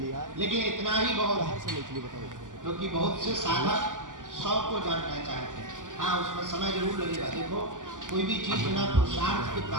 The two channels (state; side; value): late; left; 0.88 ms